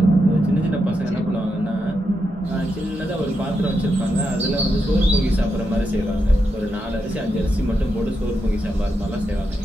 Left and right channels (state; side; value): normal; both; correlation 0.85